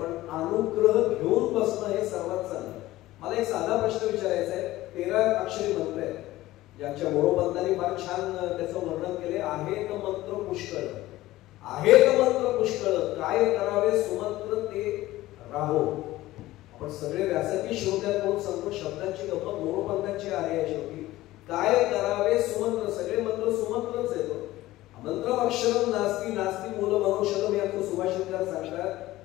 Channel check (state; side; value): quieter; right; 16.7 dB